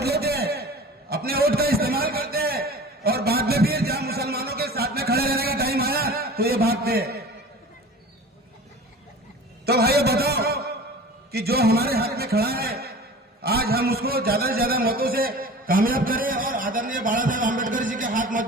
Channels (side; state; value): both; normal; correlation 0.39